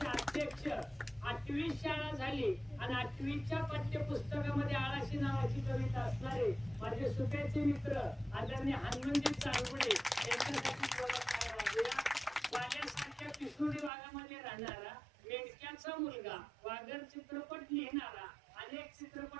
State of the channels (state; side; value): drops out; left; at 13.9 s